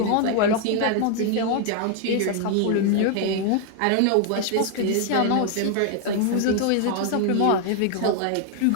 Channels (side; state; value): both; different; correlation 0.00